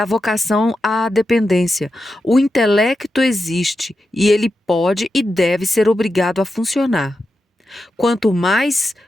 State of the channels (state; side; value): normal; both; correlation 0.89